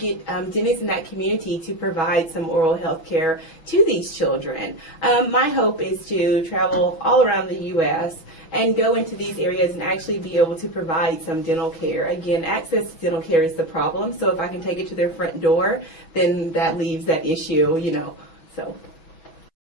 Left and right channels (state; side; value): late; right; 6.2 ms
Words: dentists in that community to provide some oral health care to these children. My hope is to travel all around the U.S. and go into these areas and actually be able to provide some dental care. Again, access to dental care is the problem, so if I can take it to their front door, then that leaves that issue, so.